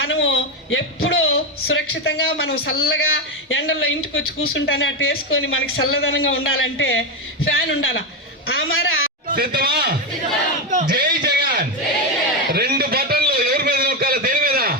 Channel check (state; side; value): normal; both; correlation 0.10